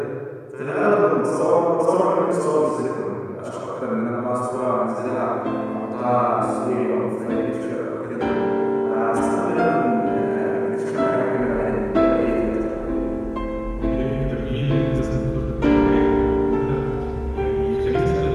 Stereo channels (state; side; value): identical; both; correlation 1.00